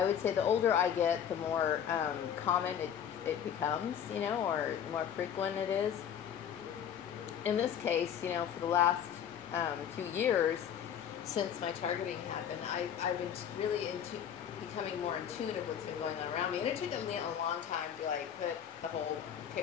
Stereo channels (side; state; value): right; quieter; 8.9 dB